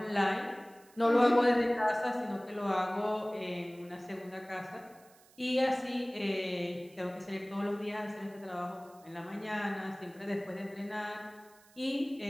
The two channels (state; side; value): noise; right; hiss, 27 dB below the sound